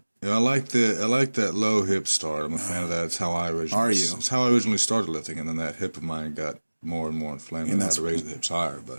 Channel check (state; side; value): inverted; both; correlation -1.00